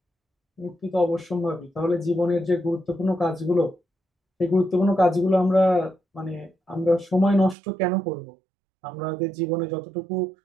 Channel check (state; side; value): drops out; left; at 7.6 s